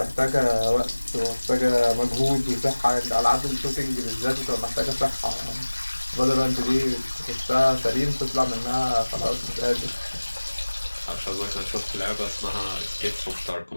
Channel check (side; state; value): both; inverted; correlation -1.00